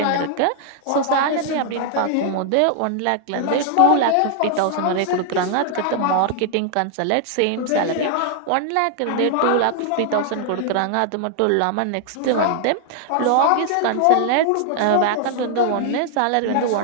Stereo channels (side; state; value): both; different; correlation 0.00